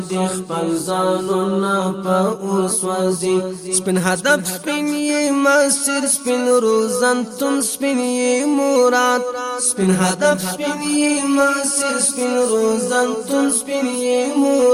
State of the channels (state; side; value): identical; both; correlation 1.00